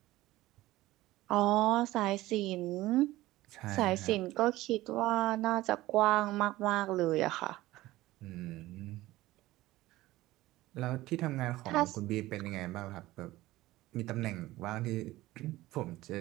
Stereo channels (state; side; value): quieter; left; 17.3 dB